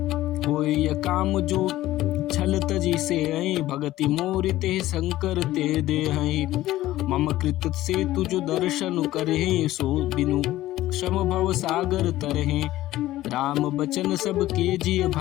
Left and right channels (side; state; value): right; quieter; 15.5 dB